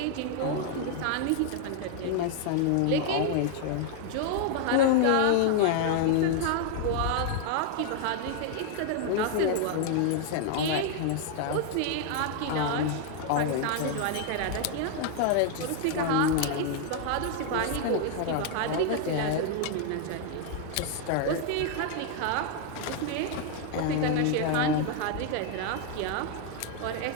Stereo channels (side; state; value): both; different; correlation 0.00